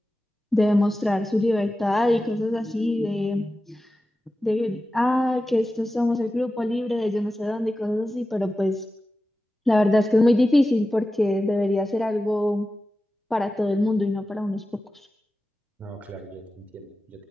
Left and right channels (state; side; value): normal; both; correlation 0.94